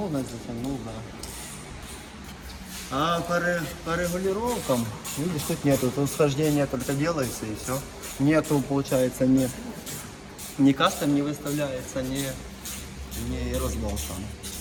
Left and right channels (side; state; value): both; identical; correlation 1.00